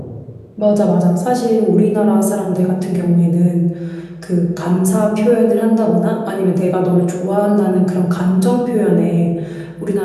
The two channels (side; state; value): both; identical; correlation 1.00